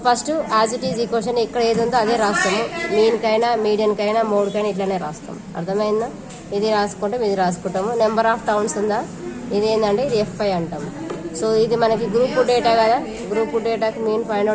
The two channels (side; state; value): both; identical; correlation 1.00